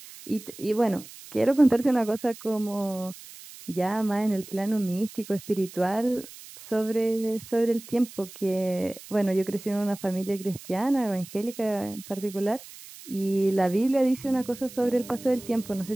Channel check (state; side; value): noise; right; hiss, 17 dB below the sound